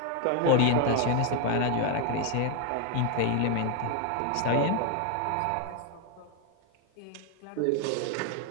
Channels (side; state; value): both; different; correlation 0.01